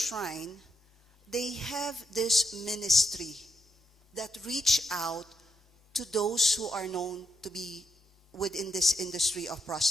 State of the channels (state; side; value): normal; both; correlation 0.78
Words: they have this ministry that reach out to those who are known to be within this industry of